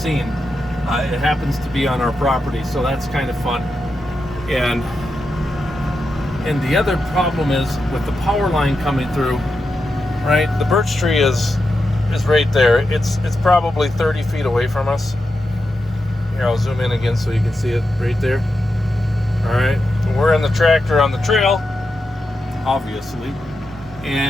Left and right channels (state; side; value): normal; both; correlation 0.88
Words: It happens to be on our property, so that's kind of fun. And the other problem is with the power line coming through, right? The birch tree is right there. It's probably 30 feet away from us. Here, I'll zoom in again so you can see it right there. All right, we're in the tractor on the trail, obviously,